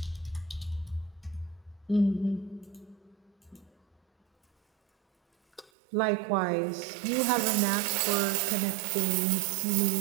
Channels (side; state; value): left; drops out; at 5.7 s